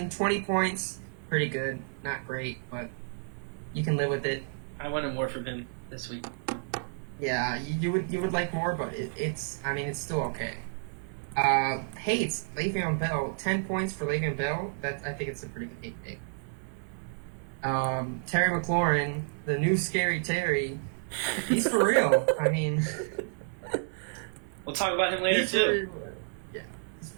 20 points, pretty good. Not great, but you can live with it. I wanted more from him this week. Yeah, you would like more, but it's still okay. Hates Le'Veon Bell, 10 points for Le'Veon Bell. I think it's a pretty good hate pick. Terry McLaurin, the new scary Terry, he's for real. I mean, we'll talk about him later too.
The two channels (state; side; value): silent; left; 57 dB below the other